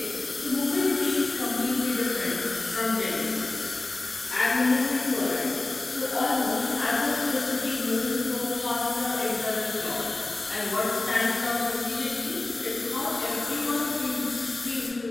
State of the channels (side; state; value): right; quieter; 3.1 dB